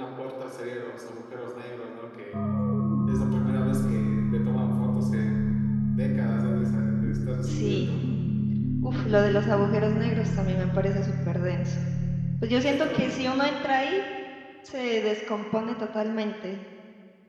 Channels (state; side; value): identical; both; correlation 1.00